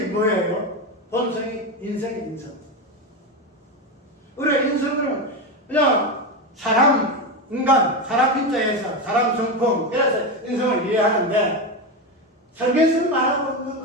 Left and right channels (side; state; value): both; normal; correlation 0.15